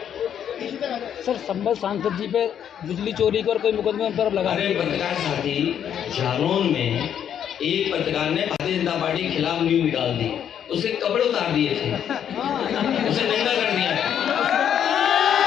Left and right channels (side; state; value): right; quieter; 9.2 dB